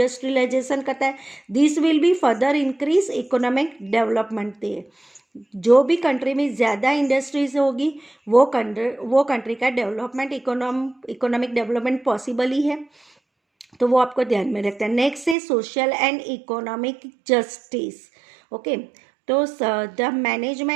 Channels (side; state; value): left; drops out; at 15.4 s